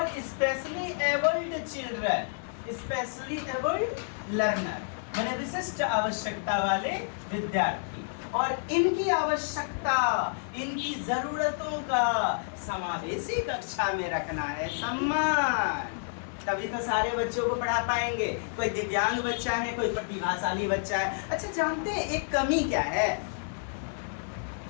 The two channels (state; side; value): silent; right; 57 dB below the other